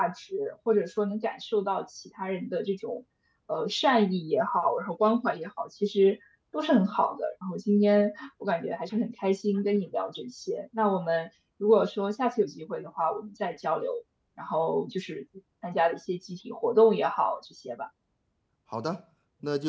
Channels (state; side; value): identical; both; correlation 1.00